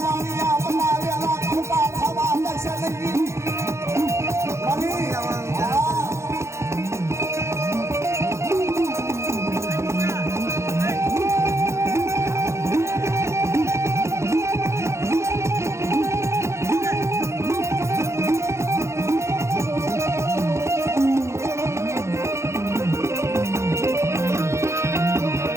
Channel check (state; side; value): late; left; 0.14 ms